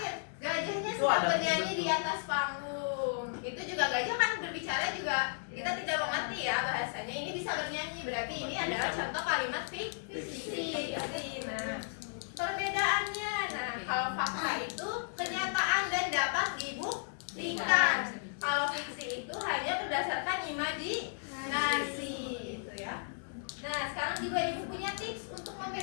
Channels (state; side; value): silent; right; digital silence